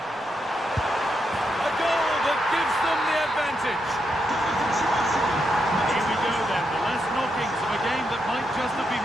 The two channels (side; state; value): both; normal; correlation 0.82